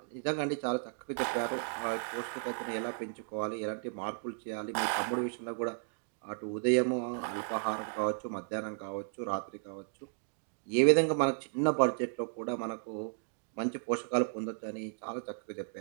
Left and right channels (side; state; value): left; silent; digital silence